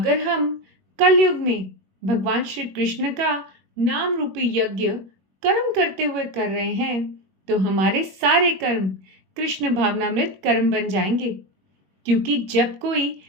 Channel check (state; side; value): late; left; 21 ms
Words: हम कलयुग में भगवान श्री कृष्ण का नाम रूपी यज्ञ कर्म करते हुए कर रहे हैं तो हमारे सारे कर्म कृष्ण भावनामृत कर्म बन जाएंगे, क्योंकि जब कोई